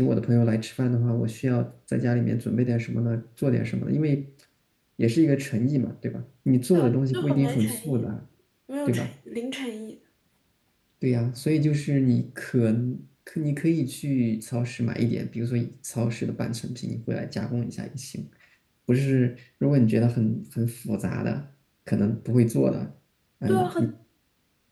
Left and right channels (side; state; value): both; identical; correlation 1.00